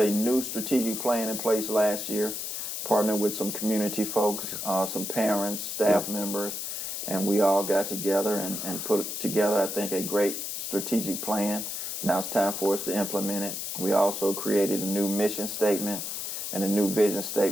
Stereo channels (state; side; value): noise; left; hiss, 4 dB below the sound